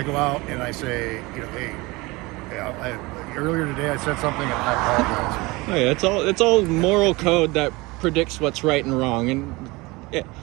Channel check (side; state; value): left; quieter; 23.2 dB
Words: go out and I say, hey, earlier today I said something and I apologize. Oh yeah, it's all moral code that predicts what's right and wrong, and yeah.